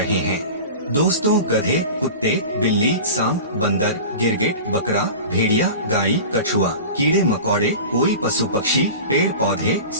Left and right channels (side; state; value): both; inverted; correlation -0.34